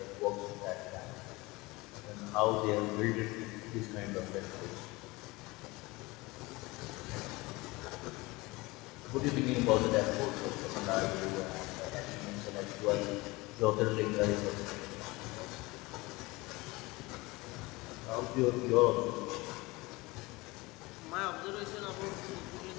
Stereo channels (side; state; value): right; quieter; 22.6 dB